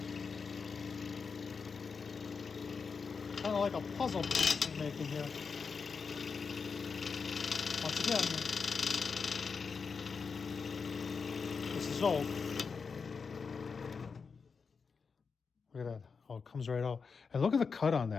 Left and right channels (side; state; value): right; quieter; 5.4 dB